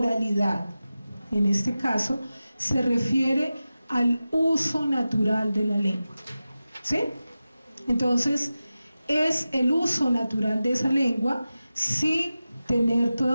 en este caso se refiere al uso natural de la lengua, ¿sí? Entonces, es el uso natural de esa lengua sin tener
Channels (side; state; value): both; inverted; correlation -0.94